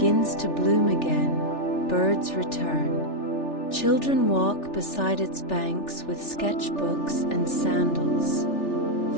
to bloom again. Birds return. Children walk beside its banks with sketchbooks and sandals.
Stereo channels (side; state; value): right; late; 3.4 ms